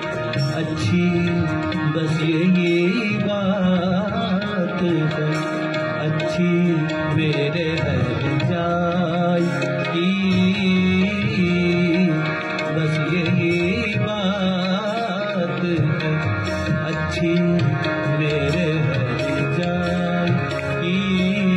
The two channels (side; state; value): both; identical; correlation 1.00